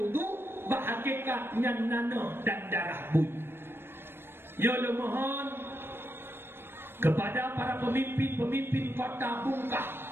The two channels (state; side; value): late; left; 0.11 ms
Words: bahagikat yang nanah dan darah bui. Ya Allah mohon kepada para pemimpin kota Bungkah,